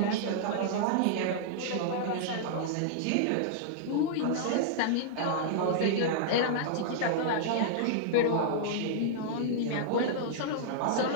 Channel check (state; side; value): different; both; correlation -0.02